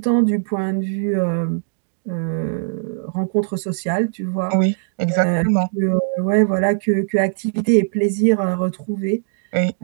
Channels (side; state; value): left; silent; digital silence